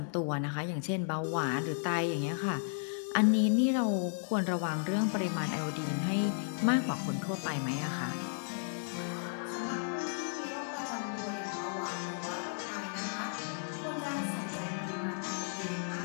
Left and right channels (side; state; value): right; silent; digital silence